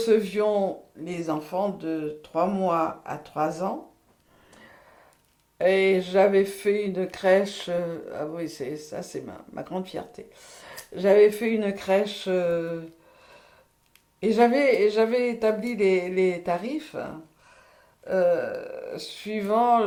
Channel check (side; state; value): both; identical; correlation 1.00